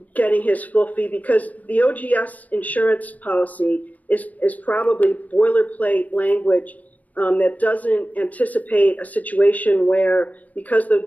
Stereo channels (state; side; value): late; right; 0.077 ms